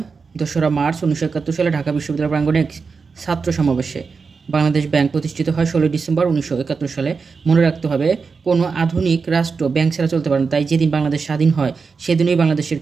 2রা মার্চ 1971 সালে ঢাকা বিশ্ববিদ্যালয় প্রাঙ্গণে এক ছাত্র সমাবেশে। বাংলাদেশ ব্যাংক প্রতিষ্ঠিত হয় 16 ডিসেম্বর 1971 সালে। মনে রাখতে হবে, কোনো আধুনিক রাষ্ট্র ব্যাংক ছাড়া চলতে পারে না, তাই যেদিন বাংলাদেশ স্বাধীন হয় সেদিনই বাংলাদেশের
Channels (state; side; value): quieter; left; 5.0 dB